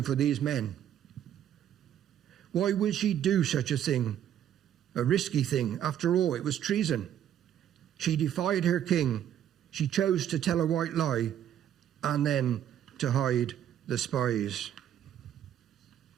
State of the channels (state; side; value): quieter; left; 10.4 dB